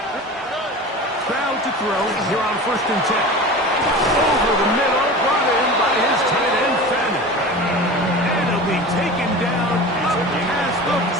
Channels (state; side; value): normal; both; correlation 0.34